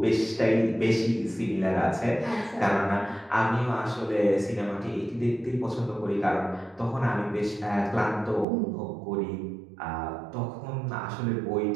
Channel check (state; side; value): drops out; left; at 8.5 s